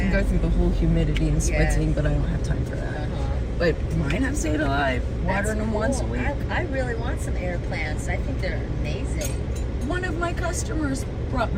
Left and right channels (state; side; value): identical; both; correlation 1.00